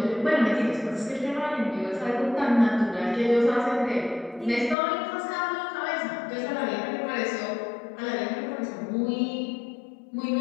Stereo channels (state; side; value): drops out; right; at 4.8 s